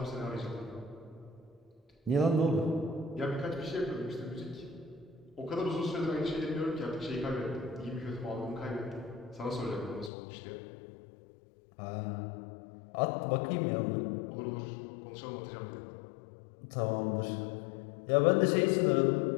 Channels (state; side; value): drops out; right; at 10.1 s